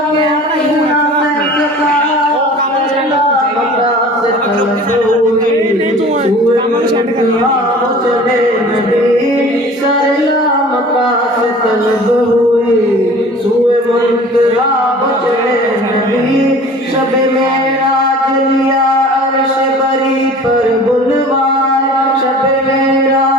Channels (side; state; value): both; normal; correlation 0.44